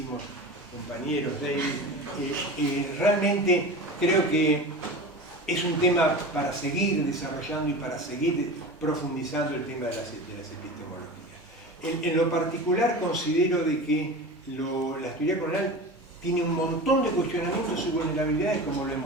compañeros, David, realmente creo que es un tema para seguir desarrollando y para seguir profundizando el tema de las epistemologías. En lo particular considero de que la teoría colonial tiene un montón de cuestionamientos y vulnerabilidades como lo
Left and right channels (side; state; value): both; normal; correlation 0.31